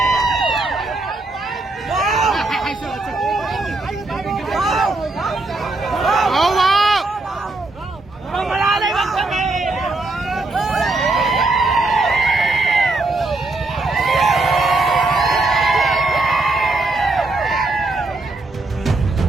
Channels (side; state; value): left; quieter; 3.1 dB